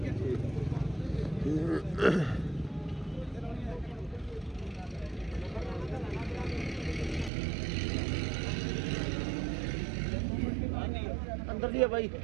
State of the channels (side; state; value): left; drops out; at 7.3 s